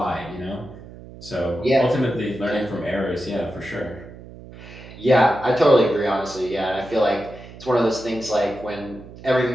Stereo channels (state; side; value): noise; right; hum, 17 dB below the sound